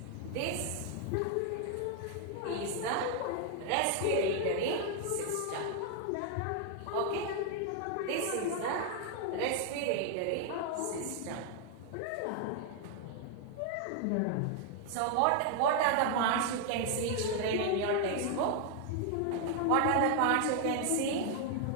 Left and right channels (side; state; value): both; different; correlation 0.00